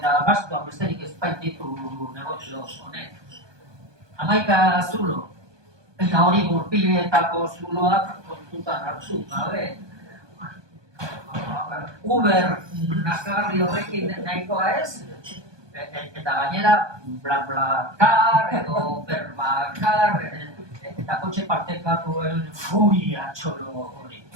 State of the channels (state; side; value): late; left; 1.2 ms